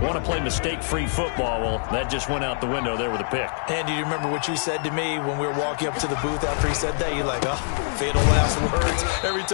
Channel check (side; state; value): right; silent; digital silence